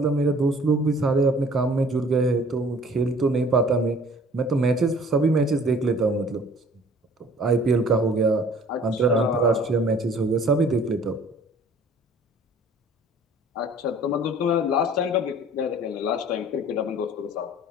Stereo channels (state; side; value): normal; both; correlation 0.51